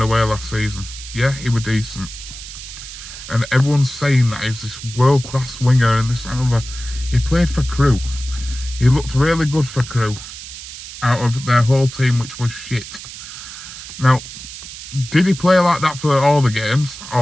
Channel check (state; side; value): noise; right; hiss, 12 dB below the sound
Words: away last season. Yeah, he was decent. And everyone's saying that he's this world-class winger and this and other. He played for Crewe. He looked really good for Crewe out of their whole team, which was shit. Now, did he play like that for all the games,